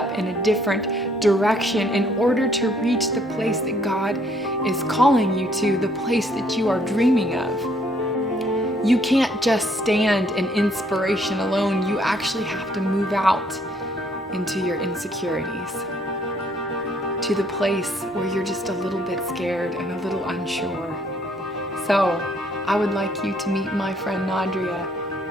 in a different direction in order to reach the place that God is calling you to, the place that you are dreaming of. You can't just stand in inspiration alone. You actually have to move out into your insecurities, to the place where you're just a little bit scared and a little unsure. So I would like you to meet my friend Nadria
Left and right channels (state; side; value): normal; both; correlation 0.66